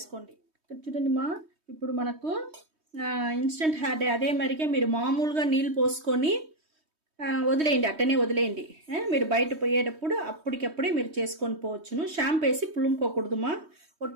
ఇక్కడ చూడండిమా, ఇప్పుడు మనకు ఇన్స్టెంట్ హెయిర్ డై అదే మరిగే మీరు మామూలుగా నీళ్ళు పోసుకొని వదిలేయండి, అట్టనే వదిలేయండి. మీరు బయట పోయేటప్పుడు అప్పటికప్పుడే మీరు చేసుకొని పోవచ్చును. షాంపూ వేసి పులుముకోకూడదుమా.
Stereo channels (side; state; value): left; late; 3.2 ms